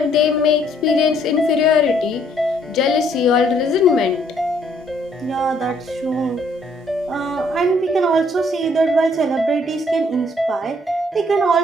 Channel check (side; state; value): both; normal; correlation 0.65